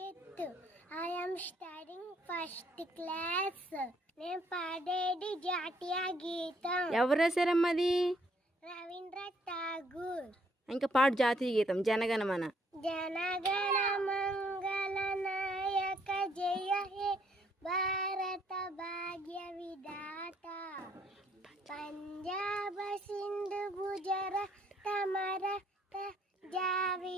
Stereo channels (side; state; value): both; normal; correlation 0.67